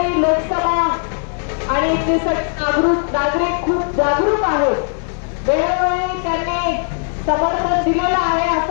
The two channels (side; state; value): right; silent; 67 dB below the other